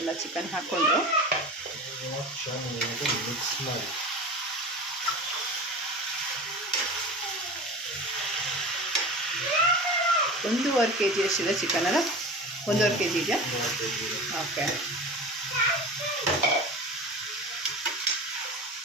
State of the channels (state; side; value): normal; both; correlation 0.33